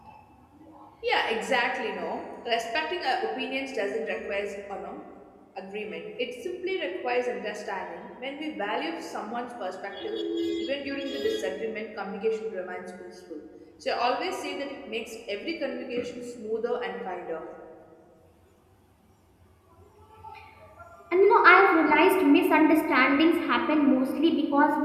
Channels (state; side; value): identical; both; correlation 1.00